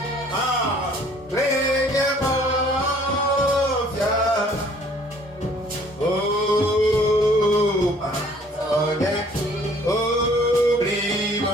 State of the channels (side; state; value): both; normal; correlation 0.57